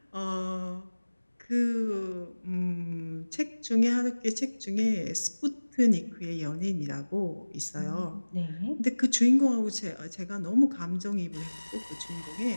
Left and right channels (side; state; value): both; inverted; correlation -1.00